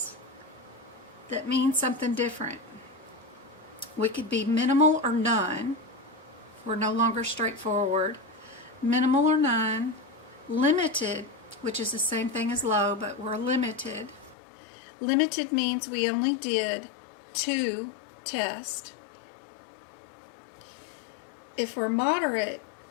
that mean something different. We could be minimal or none. We're no longer straightforward. Minimal or none. Limited, which is the same thing as low, but we're limited. Limited means we only did 2 tests. If we're moderate,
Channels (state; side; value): drops out; right; at 14.4 s